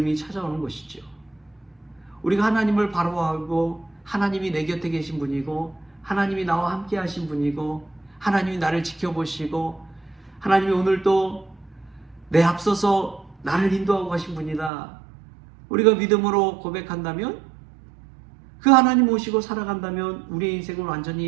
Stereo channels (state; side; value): drops out; left; at 14.7 s